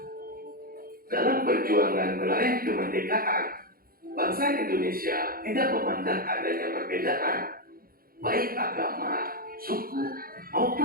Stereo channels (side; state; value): left; late; 0.42 ms